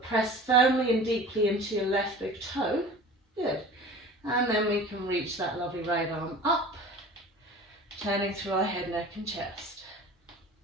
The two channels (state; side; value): normal; both; correlation 0.40